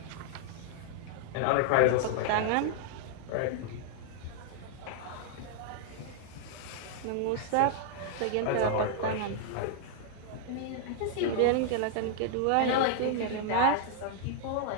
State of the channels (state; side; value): different; both; correlation -0.01